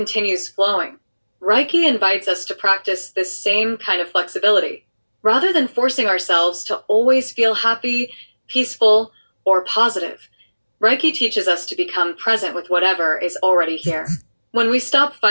flowing. Reiki invites us to practice this same kind of flexibility. Rather than forcing ourselves to always feel happy, peaceful, or positive, Reiki teaches us to become present with whatever is already here. When we stop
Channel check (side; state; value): both; inverted; correlation -1.00